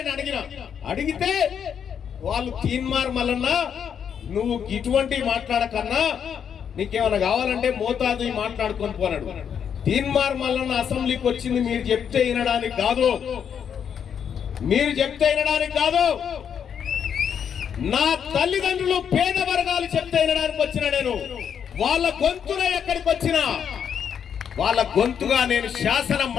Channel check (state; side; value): quieter; right; 7.9 dB